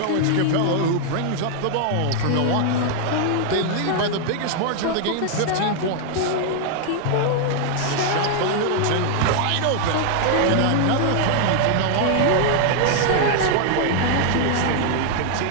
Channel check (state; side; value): different; both; correlation 0.00